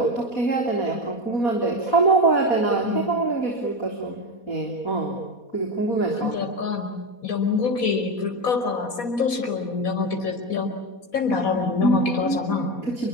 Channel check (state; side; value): late; right; 4.2 ms